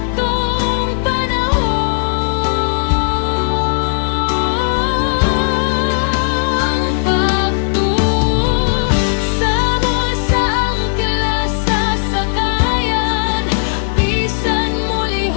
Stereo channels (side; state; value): right; silent; digital silence